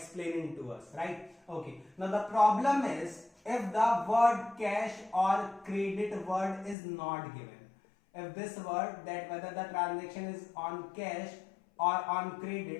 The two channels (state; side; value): drops out; right; at 6.8 s